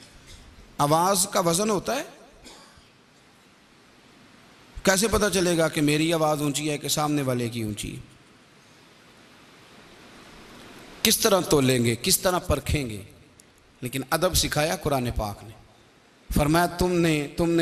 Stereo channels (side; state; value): both; identical; correlation 1.00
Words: आवाज़ का वज़न होता है। कैसे पता चलेगा कि मेरी आवाज़ ऊंची है कि सामने वाले की ऊंची है? किस तरह तोलेंगे, किस तरह परखेंगे? लेकिन अदब सिखाया कुरान पाक ने। फरमाया